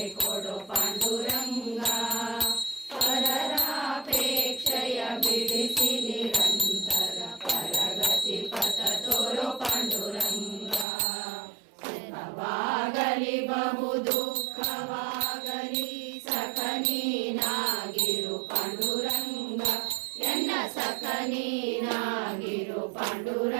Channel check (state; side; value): drops out; left; at 10.9 s